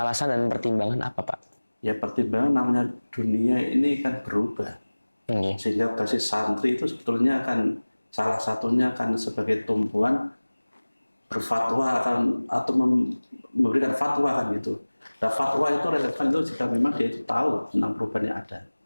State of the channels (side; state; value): both; inverted; correlation -1.00